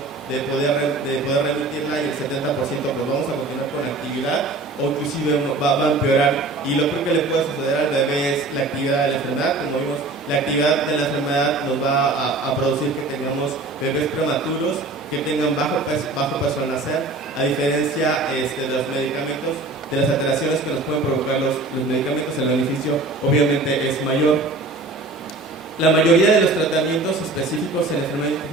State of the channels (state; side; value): quieter; left; 3.2 dB